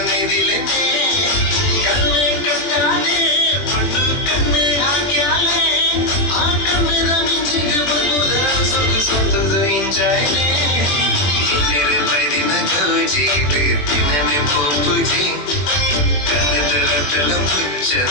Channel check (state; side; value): late; right; 20 ms